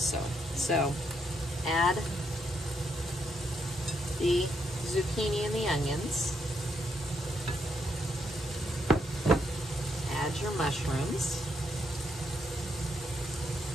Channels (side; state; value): both; normal; correlation 0.77